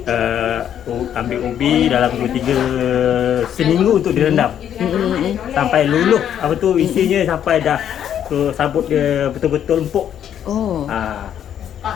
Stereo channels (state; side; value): quieter; right; 9.7 dB